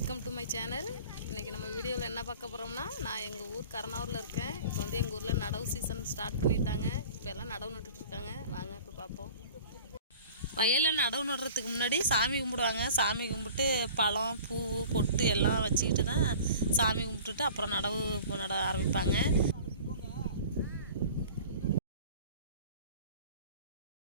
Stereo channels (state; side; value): inverted; both; correlation -0.44